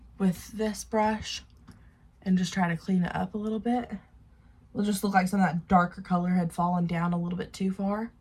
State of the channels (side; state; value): both; identical; correlation 1.00